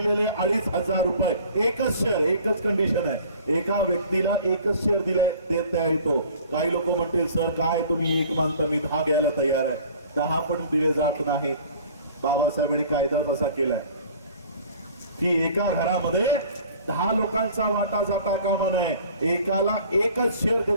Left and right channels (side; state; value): both; inverted; correlation -0.49